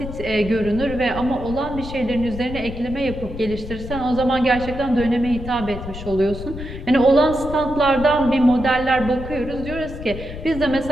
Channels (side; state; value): left; noise; rumble, 10 dB below the sound